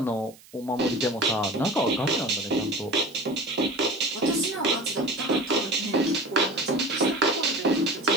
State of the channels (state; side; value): noise; right; hiss, 24 dB below the sound